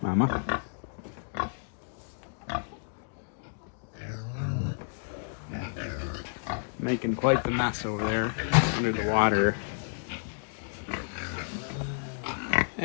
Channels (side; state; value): right; silent; digital silence